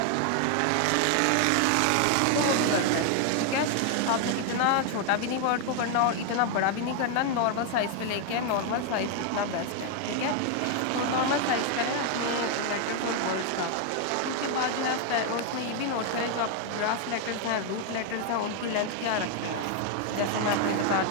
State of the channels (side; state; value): both; different; correlation 0.01